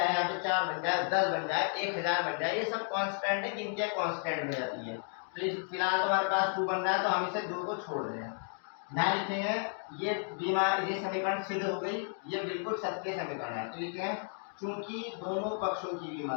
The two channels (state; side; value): silent; right; 56 dB below the other